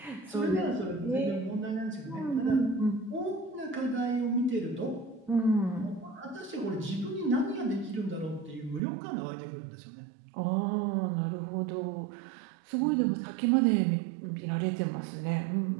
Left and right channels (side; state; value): left; drops out; at 8.8 s